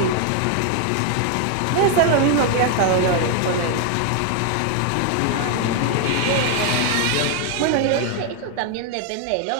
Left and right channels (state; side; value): different; both; correlation 0.00